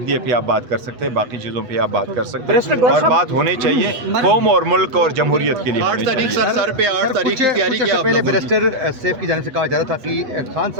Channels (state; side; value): late; left; 8.1 ms